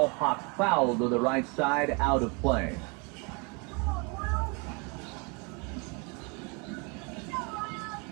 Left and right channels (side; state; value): left; quieter; 31.0 dB